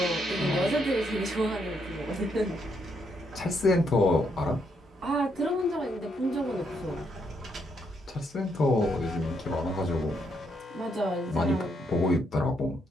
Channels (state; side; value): normal; both; correlation 0.76